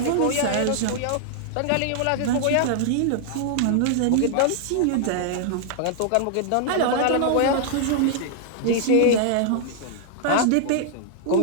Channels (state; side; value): different; both; correlation -0.01